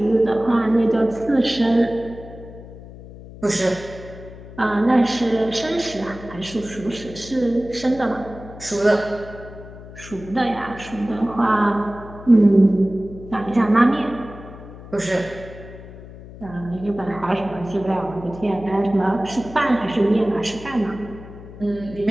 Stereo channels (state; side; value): noise; left; hum, 16 dB below the sound